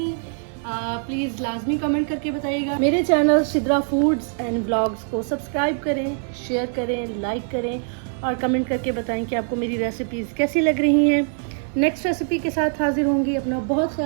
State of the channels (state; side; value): silent; left; 57 dB below the other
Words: प्लीज़ लाजमी कमेंट करके बताइएगा। मेरे channel Sidra foods and vlogs को सब्सक्राइब करें, शेयर करें, लाइक करें और कमेंट करके बताएं कि आपको मेरी रेसिपीज़ कैसी लग रही हैं। नेक्स्ट रेसिपी के साथ हाजिर होंगी। अपना बहुत